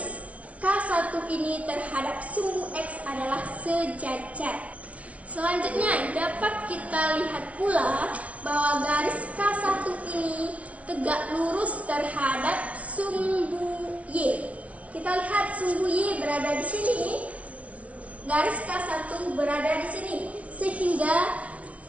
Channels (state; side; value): late; left; 0.065 ms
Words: K1 ini terhadap sumbu X adalah sejajar. Selanjutnya dapat kita lihat pula bahwa garis K1 ini tegak lurus terhadap sumbu Y. Kita lihat sumbu Y berada di sini, garis K1 berada di sini, sehingga